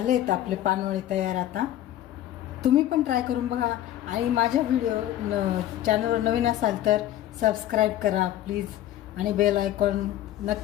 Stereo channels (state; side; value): quieter; right; 12.8 dB